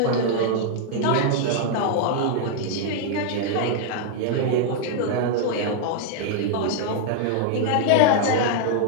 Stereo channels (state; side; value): different; both; correlation 0.00